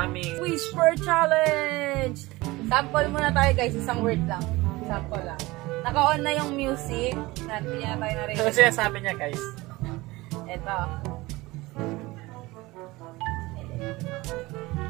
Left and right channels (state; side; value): quieter; left; 20.8 dB